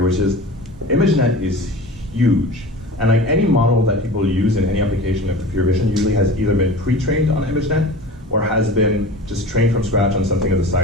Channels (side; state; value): both; normal; correlation 0.36